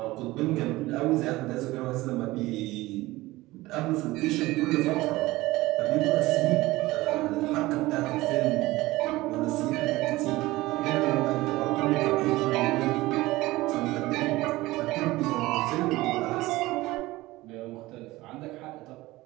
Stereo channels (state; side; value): quieter; left; 19.0 dB